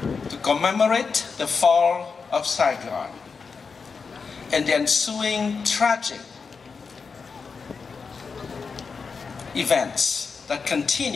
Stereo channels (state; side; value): quieter; right; 5.2 dB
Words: to commemorate the fall of Saigon and the ensuing tragic events that